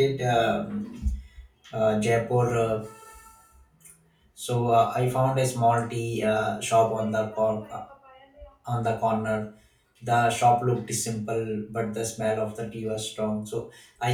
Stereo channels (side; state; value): both; identical; correlation 1.00